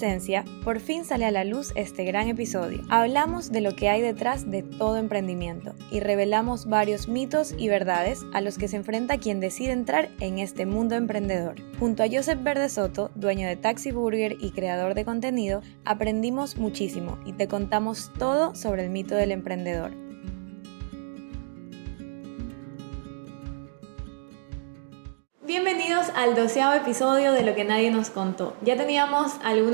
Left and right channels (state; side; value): silent; left; digital silence